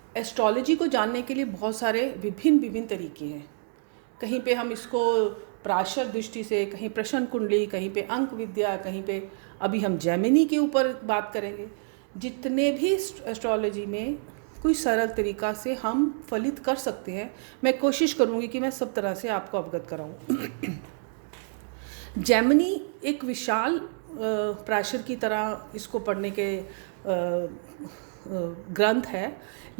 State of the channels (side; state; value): left; silent; 60 dB below the other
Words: एस्ट्रोलॉजी को जानने के लिए बहुत सारे विभिन्न तरीके हैं। कहीं पे हम इसको प्राशर दृष्टि से, कहीं प्रश्न कुंडली, कहीं पे अंक विद्या, कहीं पे अभी हम जेमिनी के ऊपर बात करेंगे। जितने भी एस्ट्रोलॉजी में कोई सरल तरीका से हम फलित कर सकते हैं, मैं कोशिश करूँगी कि मैं सब तरह से आपको अवगत कराऊँ। जेमिनी एक विशाल प्राशर की तरह इसको पढ़ने के ग्रंथ है,